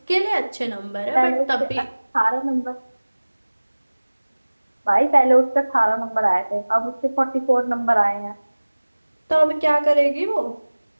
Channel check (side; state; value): both; inverted; correlation -1.00